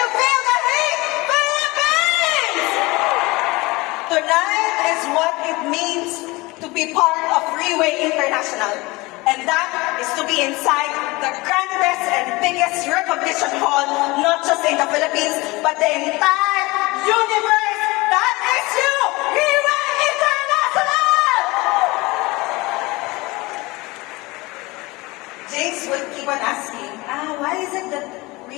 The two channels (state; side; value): quieter; right; 22.7 dB